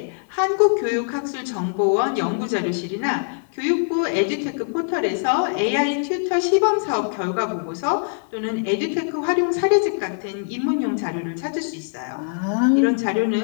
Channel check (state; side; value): silent; right; 64 dB below the other